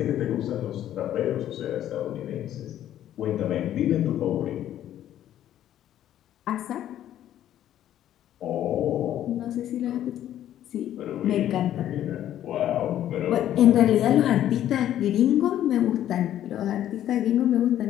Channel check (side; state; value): right; quieter; 11.7 dB